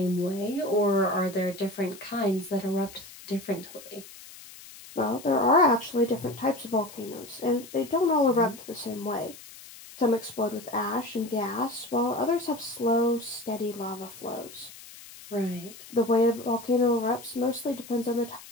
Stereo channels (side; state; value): left; noise; hiss, 17 dB below the sound